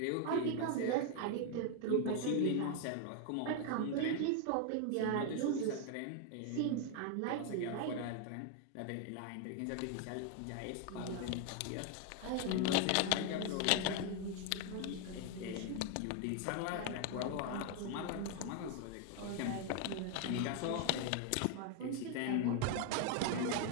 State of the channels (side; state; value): both; different; correlation 0.00